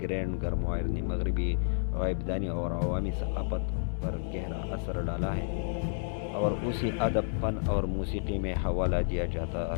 گرینڈ گرموائر نے مغربی غائبدانی اور عوامی ثقافت پر گہرا اثر ڈالا ہے اور اسے ادب، فن اور موسیقی میں حوالہ دیا جاتا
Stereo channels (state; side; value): silent; right; digital silence